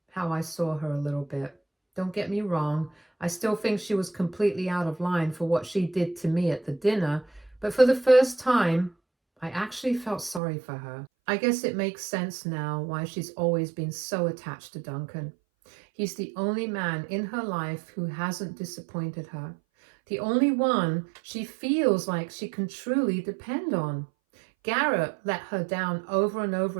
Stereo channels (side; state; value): left; drops out; at 10.4 s